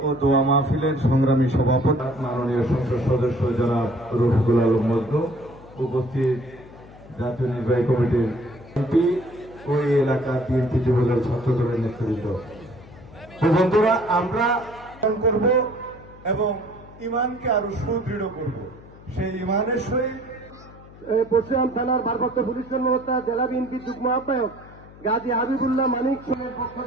ও দোয়া মাহফিলের সংগ্রামী সভাপতি মাননীয় সংসদ সদস্য জনাব রফিকুল আলম মজনু, উপস্থিত জাতীয় নির্বাহী কমিটির এমপি ও এই এলাকার বিএনপি যুবদল ছাত্রদলের নেতৃবৃন্দ, বন্ধুরা, আমরা করব এবং ইমানকে আরো সুদৃঢ় করব। সেই ইমানের সহিত পশ্চিম থানার ভারপ্রাপ্ত পুলিশ কর্মকর্তা জেলা বিএনপি যুগ্ম আহ্বায়ক গাজী হাবিবুল্লাহ মানিক সিংহের পক্ষ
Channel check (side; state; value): left; noise; hum, 20 dB below the sound